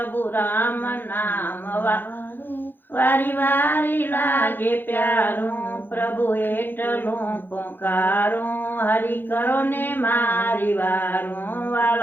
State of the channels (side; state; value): right; late; 0.096 ms